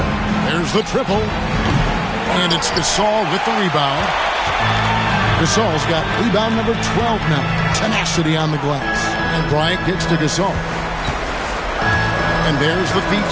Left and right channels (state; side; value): identical; both; correlation 1.00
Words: There's the triple. And it's Gasol with the rebound. Gasol's got rebound number 12 now. Tenacity on the glass. And Bryant gets to Gasol. And there's the feed